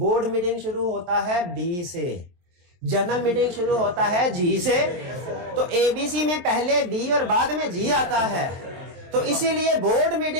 मीटिंग शुरू होता है बी से, जनरल मीटिंग शुरू होता है जी से, तो एबीसी में पहले बी और बाद में जी आता है। तो इसीलिए बोर्ड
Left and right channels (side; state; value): left; late; 23 ms